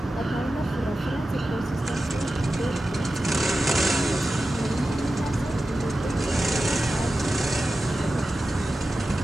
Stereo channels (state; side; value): normal; both; correlation 0.93